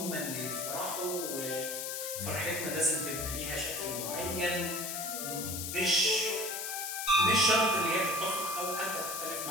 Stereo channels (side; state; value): left; noise; hiss, 4 dB below the sound